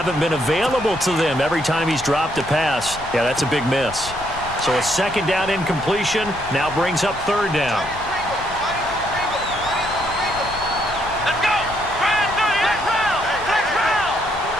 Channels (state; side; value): noise; left; rumble, 15 dB below the sound